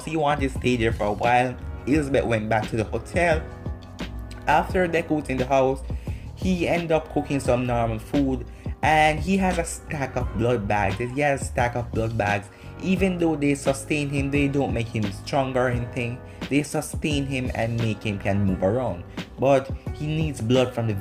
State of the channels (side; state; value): both; identical; correlation 1.00